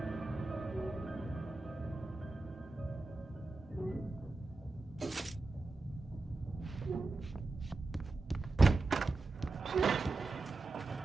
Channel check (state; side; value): quieter; left; 3.4 dB